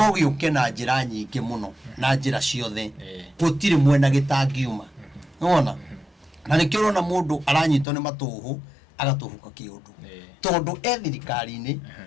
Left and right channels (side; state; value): right; drops out; at 7.9 s